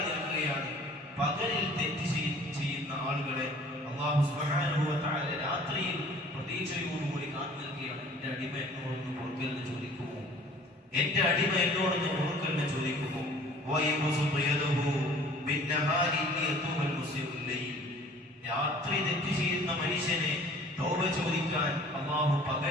നിൽക്കുകയാണ്. പകലിൽ തെറ്റ് ചെയ്യുന്ന ആളുകളെ അല്ലാഹു സുബ്ഹാനഹു വ തആല രാത്രിയിൽ പ്രതീക്ഷയോടുകൂടി കാത്തു നിൽക്കുകയാണ്. എന്റെ അടിമ എന്നോടൊന്ന് പൊറുക്കലിന് ചോദിക്കുമോ, എന്റെ അടിമ എന്നോടൊന്ന് പൊറുക്കലിന് ചോദിക്കുമോ. രാത്രി തെറ്റ് ചെയ്യുന്ന മനുഷ്യനെ തൗബ ചോദിക്കാൻ അല്ലാഹു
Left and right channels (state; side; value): normal; both; correlation 0.50